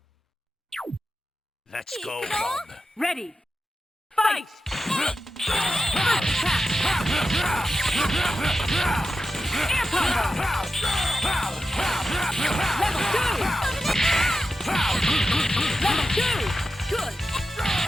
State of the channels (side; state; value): both; normal; correlation 0.91